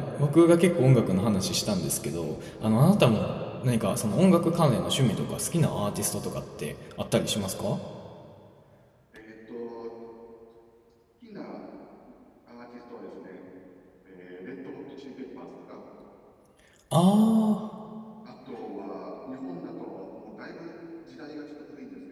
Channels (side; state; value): both; identical; correlation 1.00